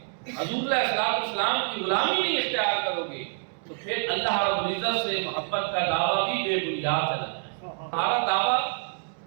حضور علیہ السلام کی غلامی نہیں اختیار کرو گے، تو پھر اللہ رب العزت سے محبت کا دعویٰ بھی بے بنیاد ہے۔ ہمارا دعویٰ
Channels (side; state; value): left; silent; digital silence